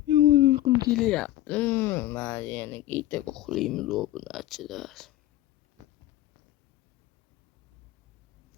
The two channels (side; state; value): right; quieter; 14.4 dB